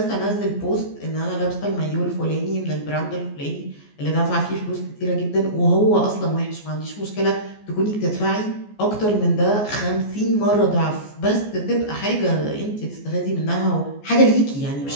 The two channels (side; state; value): right; late; 14 ms